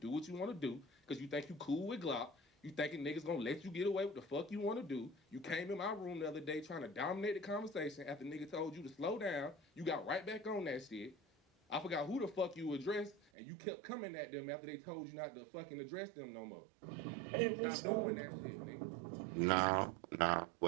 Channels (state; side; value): drops out; left; at 13.2 s